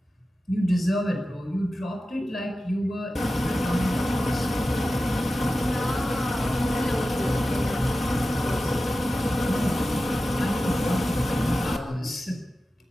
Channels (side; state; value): both; normal; correlation 0.94